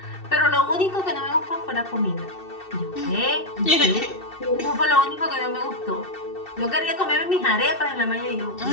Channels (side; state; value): right; late; 2.7 ms